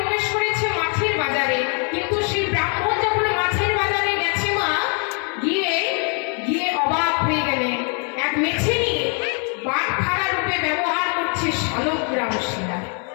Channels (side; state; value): right; quieter; 38.7 dB